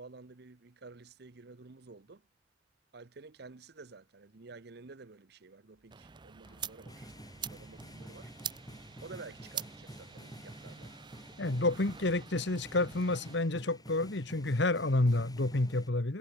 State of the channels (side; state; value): both; normal; correlation 0.38